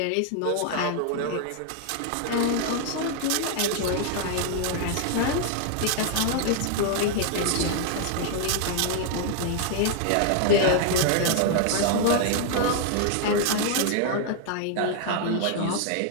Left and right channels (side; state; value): both; different; correlation 0.00